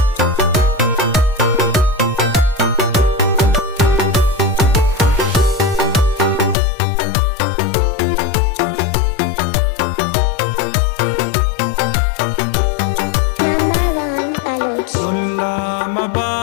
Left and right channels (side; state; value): right; drops out; at 6.6 s